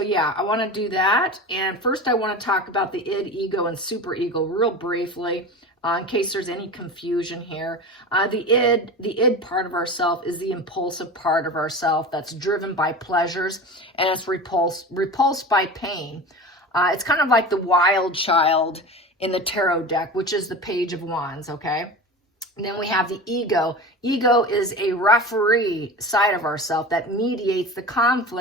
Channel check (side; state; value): both; normal; correlation 0.31